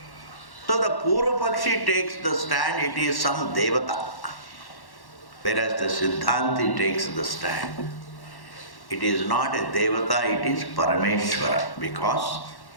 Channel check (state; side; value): late; right; 1.1 ms